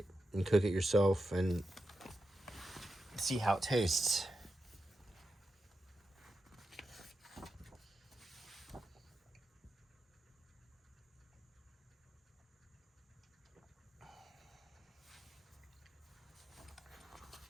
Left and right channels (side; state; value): both; normal; correlation 0.89